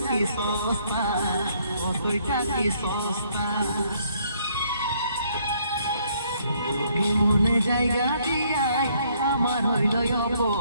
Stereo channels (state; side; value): inverted; both; correlation -0.67